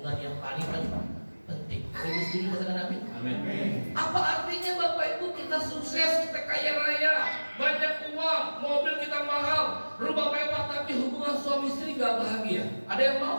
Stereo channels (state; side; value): inverted; both; correlation -1.00